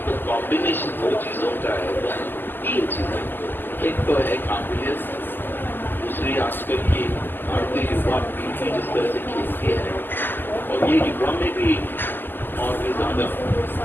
तो कॉम्बिनेशन दो चीजों का है, 3 चीजें। एक तो है काबिलियत, दूसरी आजकल की भारतीय युवा पीढ़ी जिस तरह से खेलती है और ये युवा में भी और भी ज्यादा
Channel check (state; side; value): late; right; 0.092 ms